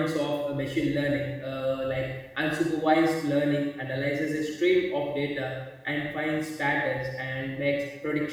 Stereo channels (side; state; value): both; identical; correlation 1.00